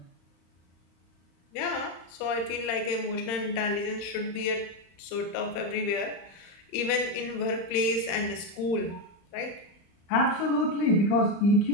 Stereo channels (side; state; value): right; late; 35 ms